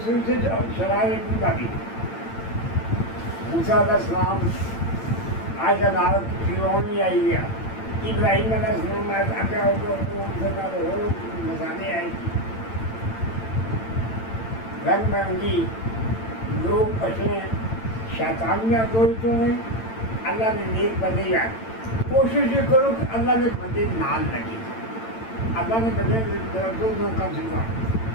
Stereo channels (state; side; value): late; right; 8.9 ms